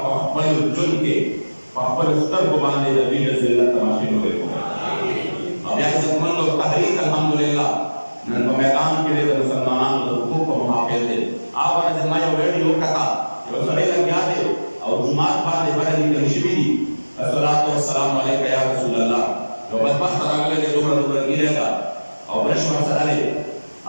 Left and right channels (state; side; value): inverted; both; correlation -1.00